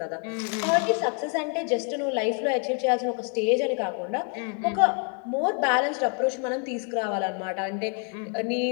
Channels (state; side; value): quieter; right; 38.5 dB